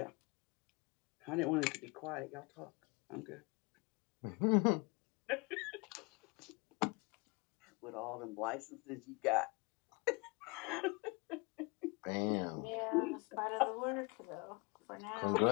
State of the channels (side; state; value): right; quieter; 28.4 dB